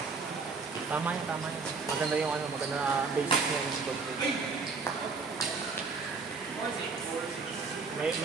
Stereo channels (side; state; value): left; quieter; 4.6 dB